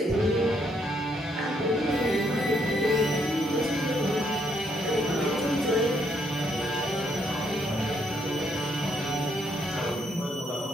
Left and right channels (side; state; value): both; normal; correlation 0.73